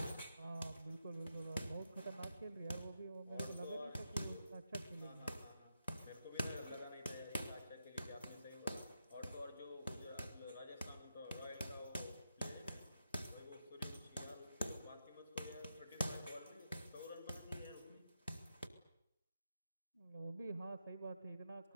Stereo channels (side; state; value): both; inverted; correlation -0.85